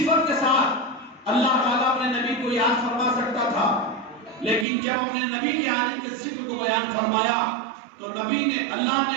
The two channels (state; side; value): drops out; left; at 4.7 s